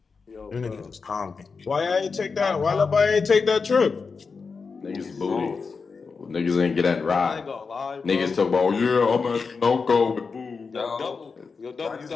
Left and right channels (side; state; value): right; quieter; 4.9 dB